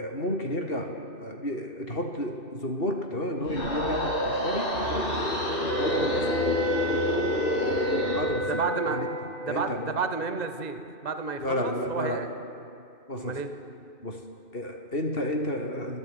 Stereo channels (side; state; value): right; late; 2.6 ms